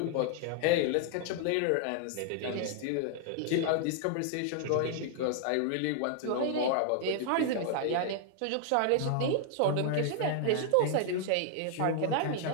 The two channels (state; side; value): different; both; correlation 0.00